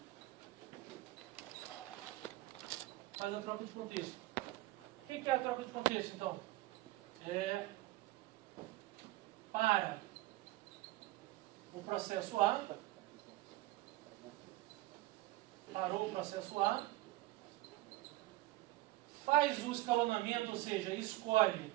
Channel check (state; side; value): quieter; left; 18.0 dB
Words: Faz a troca de contexto. O que é a troca de contexto, então? Para o processo A, parou o processo A, faz o escalonamento, ou seja, escolhe